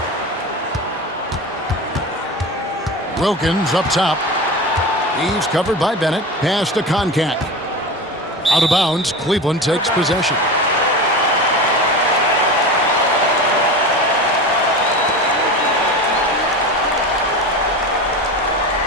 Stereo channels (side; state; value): both; normal; correlation 0.28